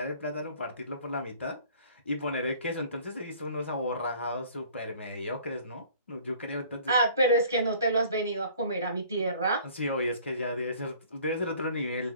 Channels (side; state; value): both; inverted; correlation -0.52